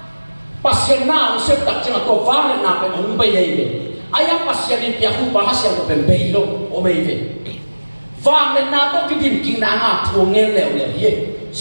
pasien na usep tak cina to vang na pe on be ye ayam pasien ni pia ku bahas yang pe be lo o me ve vang le na to kidim king na nga thu ngel leo le ye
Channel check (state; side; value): inverted; both; correlation -1.00